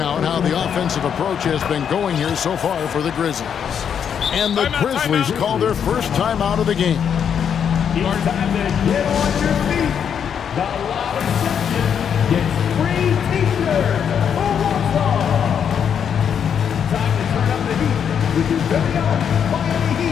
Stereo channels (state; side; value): quieter; right; 7.9 dB